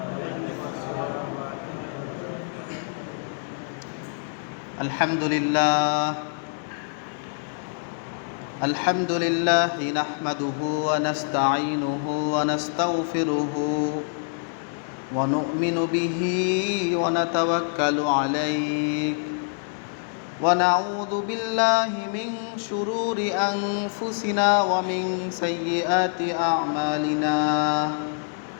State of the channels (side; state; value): right; silent; digital silence